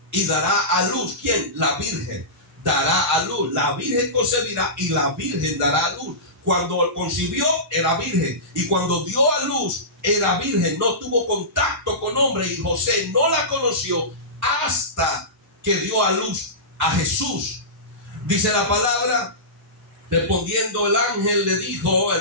y dará a luz. ¿Quién? La virgen dará a luz. La virgen concebirá y la virgen dará a luz. Cuando concibió era virgen, y cuando dio a luz era virgen, no tuvo contacto con hombre, y José no la conoció hasta que dio a luz a Jesús. Dice la palabra: respondiendo el ángel le dijo:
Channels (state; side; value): normal; both; correlation -0.20